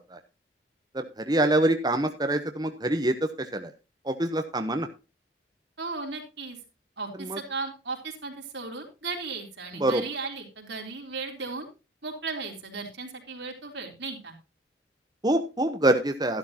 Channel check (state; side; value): normal; both; correlation 0.49